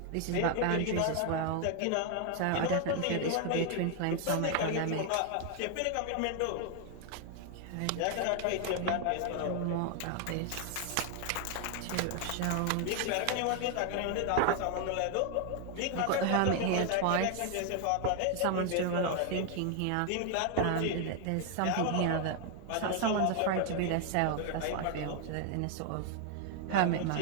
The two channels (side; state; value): both; different; correlation 0.00